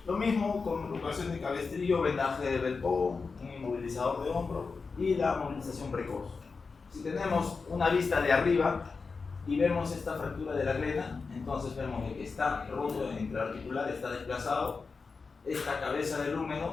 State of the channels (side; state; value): right; quieter; 4.6 dB